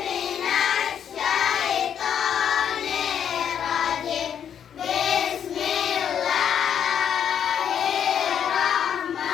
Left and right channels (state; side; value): quieter; right; 8.6 dB